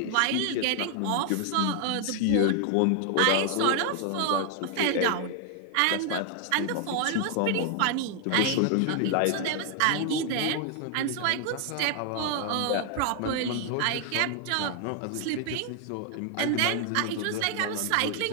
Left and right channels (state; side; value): different; both; correlation 0.00